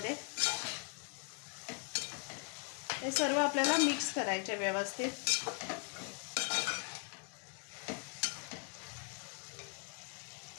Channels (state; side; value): quieter; right; 38.8 dB